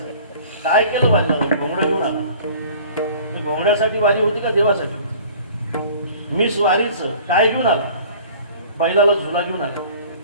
काय केलं वारीला? घोंगडं घेऊन आला. घोंगड्यासाठी वारी होती का देवासाठी? मिस वारीचं काय घेऊन आला? बैलाला झुला घेऊन आला.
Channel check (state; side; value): inverted; both; correlation -0.48